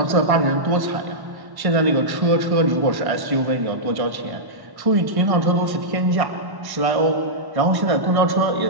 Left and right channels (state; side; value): late; left; 1.1 ms